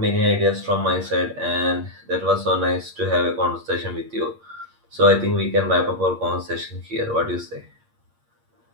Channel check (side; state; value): left; late; 8.6 ms